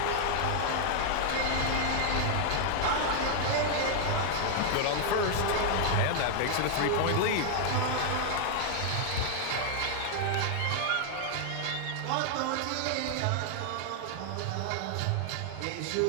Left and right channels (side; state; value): both; different; correlation 0.00